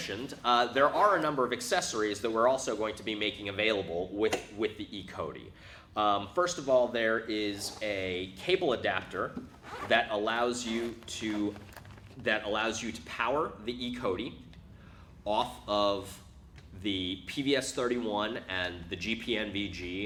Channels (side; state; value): both; identical; correlation 1.00